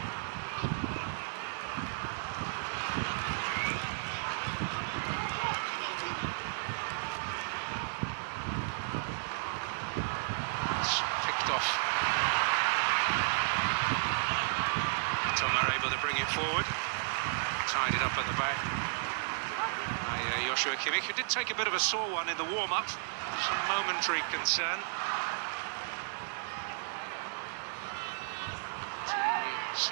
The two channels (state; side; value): silent; left; digital silence